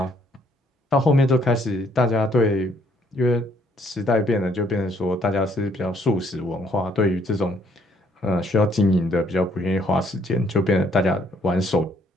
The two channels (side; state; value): both; normal; correlation 0.66